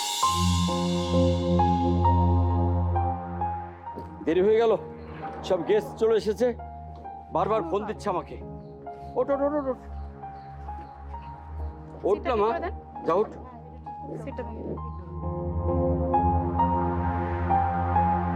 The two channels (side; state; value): both; identical; correlation 1.00